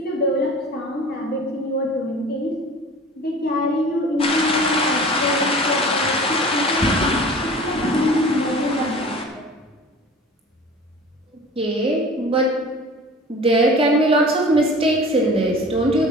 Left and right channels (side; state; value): both; normal; correlation 0.41